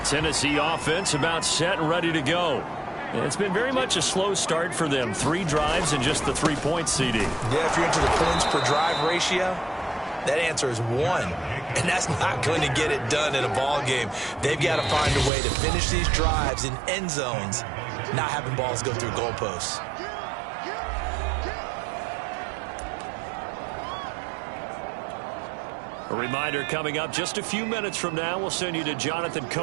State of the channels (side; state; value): left; drops out; at 15.3 s